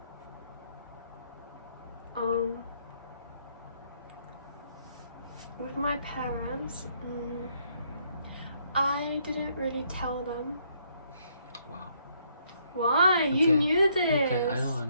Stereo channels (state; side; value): inverted; both; correlation -0.70